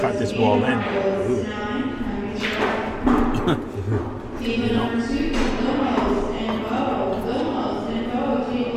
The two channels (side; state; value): both; identical; correlation 1.00